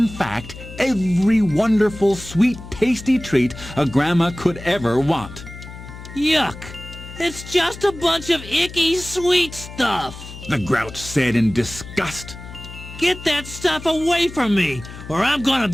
fact, every wonderful, sweet, tasty treat a grandma could ever want. Yuck! It's just a bunch of icky sweet stuff, the Grouch said in disgust. Get that stuff away from me, or I'm gonna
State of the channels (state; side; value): noise; left; hum, 14 dB below the sound